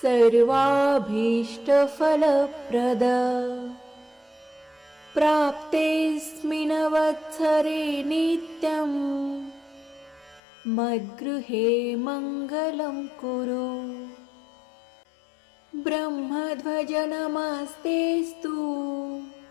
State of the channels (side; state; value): right; drops out; at 10.4 s